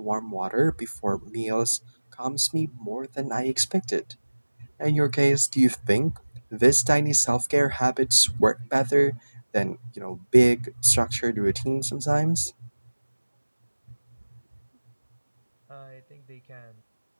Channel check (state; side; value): inverted; both; correlation -1.00